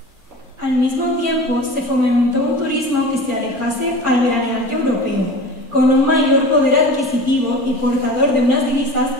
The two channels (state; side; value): normal; both; correlation 0.36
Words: Al mismo tiempo, se fomentó un turismo que se alejase al veraneante europeo, con un mayor poder adquisitivo y portador de unas divisas